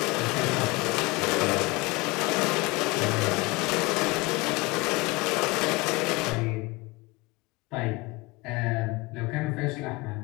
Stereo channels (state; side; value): quieter; right; 24.0 dB